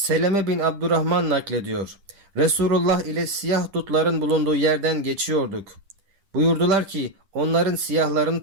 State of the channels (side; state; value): left; late; 10 ms